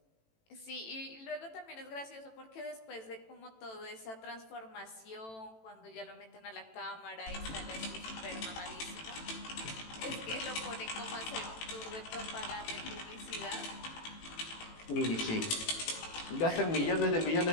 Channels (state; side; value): late; right; 18 ms